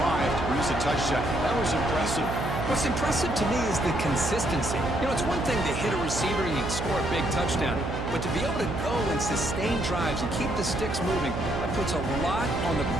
to produce a touchdown. That was impressive. What's impressive to me is the consistency. You know, it's one thing to hit a receiver and you can score a big touchdown, but to be able to go and sustain drives and keep the sticks moving, that puts a lot on the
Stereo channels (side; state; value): right; noise; hum, 4 dB below the sound